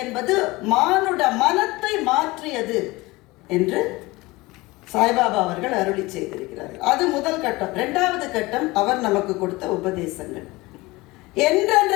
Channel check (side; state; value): right; quieter; 21.7 dB